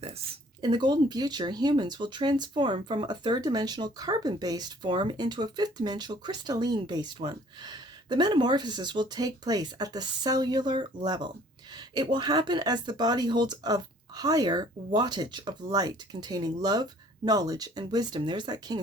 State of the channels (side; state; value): both; normal; correlation 0.56